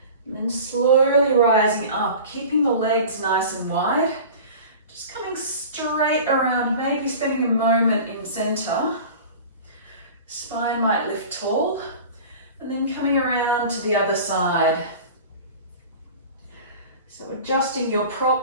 And then slowly rising up, keeping the legs nice and wide. Just coming straight around, maybe spending a moment in center. Spine might lift tall. And then coming around to the other side. So adjusting your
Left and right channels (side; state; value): both; inverted; correlation -0.38